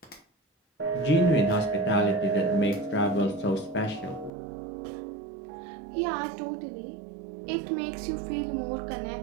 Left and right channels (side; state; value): left; drops out; at 4.3 s